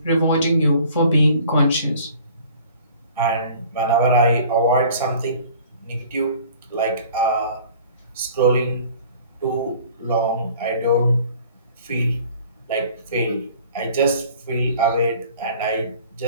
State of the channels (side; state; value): both; inverted; correlation -0.50